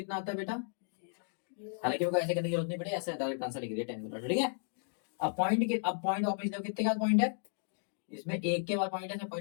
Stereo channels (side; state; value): right; silent; digital silence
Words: आता है बेटा, हालांकि वो ऐसे करने की जरूरत नहीं पड़ी, ऐसे डायरेक्ट आंसर लिख दिया 10, ठीक है। अब पॉइंट वापस देखो कितने का पॉइंट है, इसमें एक के बाद पॉइंट है,